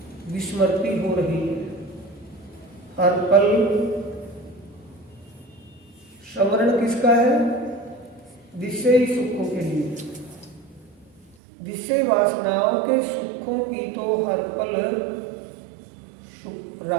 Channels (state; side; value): drops out; left; at 11.4 s